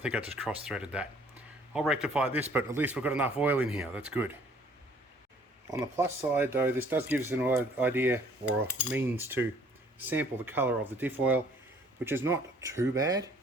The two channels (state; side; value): normal; both; correlation 0.58